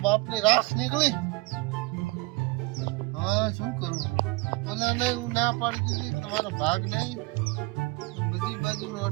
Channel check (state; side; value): quieter; left; 24.3 dB